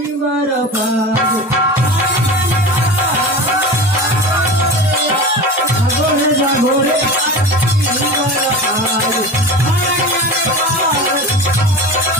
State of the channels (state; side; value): normal; both; correlation 0.31